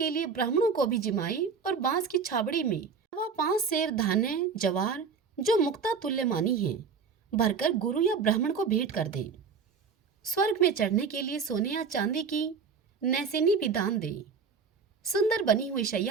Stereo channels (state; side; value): quieter; left; 5.6 dB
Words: लिए ब्राह्मणों को भी जिमाए और बांस की छाबड़ी में वह 5 सेर धान्य जवार जो मुक्ता तुल्य मानी है भरकर गुरु या ब्राह्मण को भेंट कर दे। स्वर्ग में चढ़ने के लिए सोने या चांदी की नैसेनी भी दान दे। सुंदर बनी हुई